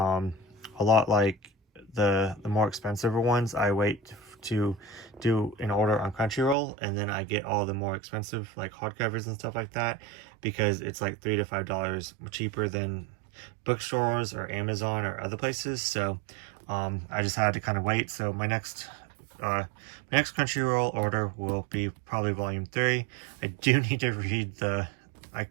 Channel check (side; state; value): left; drops out; at 6.6 s